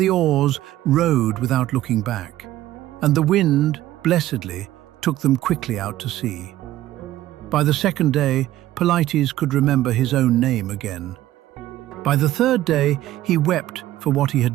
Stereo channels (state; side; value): quieter; left; 14.5 dB